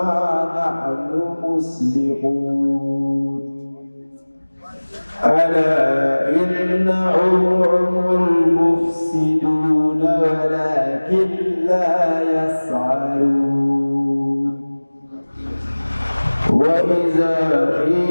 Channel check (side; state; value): both; inverted; correlation -1.00